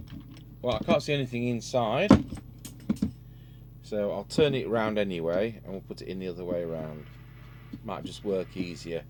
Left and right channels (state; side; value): identical; both; correlation 1.00